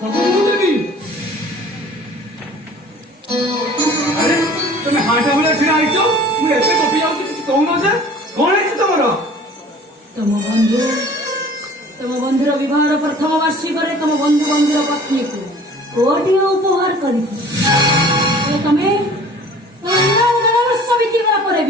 ମୁଁ ଦେବି। ଆରେ ତମେ ହାଟ ଭଳିଆ ଛିଡା ହେଇଛ, ମୁଁ ଏତେ ଗପି ଯାଉଛି କିଛି କହୁନ ଯେ, କଣ ହେଇଛି ତମର? ତମ ବନ୍ଧୁର ବିବାହର ପ୍ରଥମ ବାର୍ଷିକରେ ତମ ବନ୍ଧୁର ପତ୍ନୀକୁ କୋଟିଏ ଉପହାର କରିଛି। ତମେ ବର୍ଷ ବିତିଗଲା ପରେ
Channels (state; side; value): normal; both; correlation 0.48